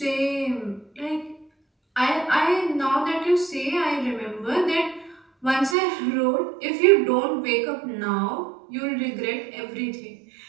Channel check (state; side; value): drops out; left; at 5.8 s